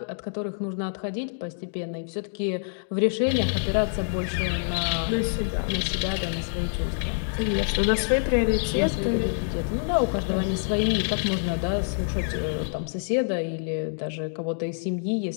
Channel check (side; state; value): right; silent; digital silence